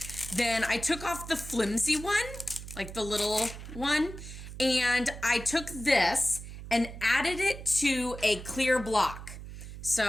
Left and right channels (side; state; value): right; noise; hum, 12 dB below the sound